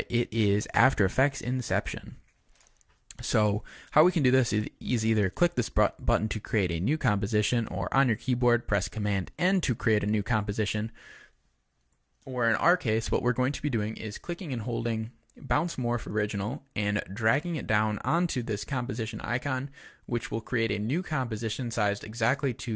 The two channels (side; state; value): both; identical; correlation 1.00